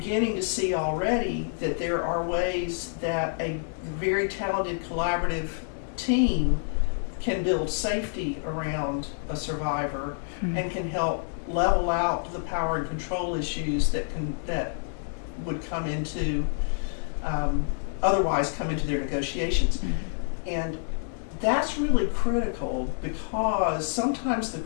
to see already that there are ways that a very talented collaborative team can build safety around a survivor and can help level out the power and control issues that would come into otherwise come into their negotiations. And that's really critical because sometimes the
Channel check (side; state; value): right; silent; digital silence